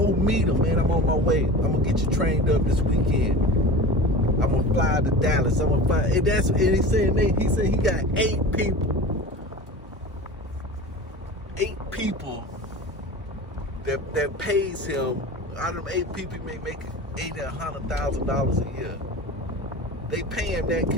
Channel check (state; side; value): normal; both; correlation 0.34